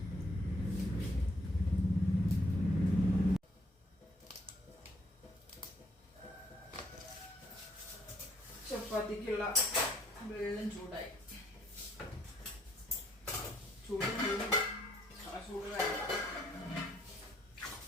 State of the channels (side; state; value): both; normal; correlation 0.67